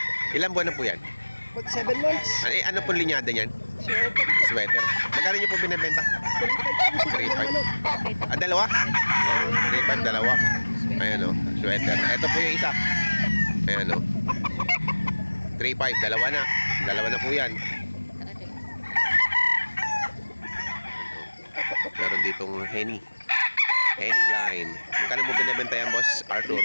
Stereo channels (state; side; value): inverted; both; correlation -1.00